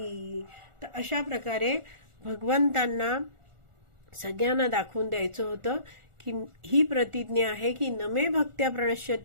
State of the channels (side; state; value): left; late; 1.4 ms